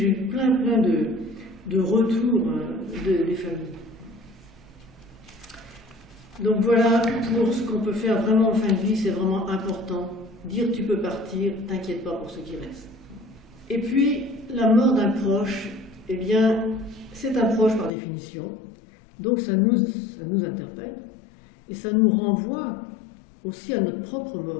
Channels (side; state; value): right; drops out; at 17.9 s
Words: eu plein de retours des familles. Donc voilà, pour ce qu'on peut faire vraiment en fin de vie, c'est vraiment important. Dire tu peux partir, t'inquiète pas pour ce qui reste. Et puis, la mort d'un proche, eh bien, c'est un proche par définition. Donc ça nous interpelle. Et ça nous renvoie aussi à notre propre